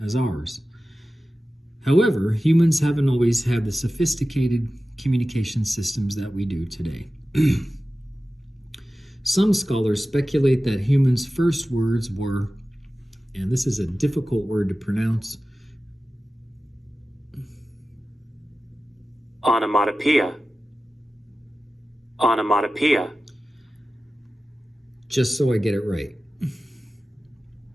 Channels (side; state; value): both; normal; correlation 0.95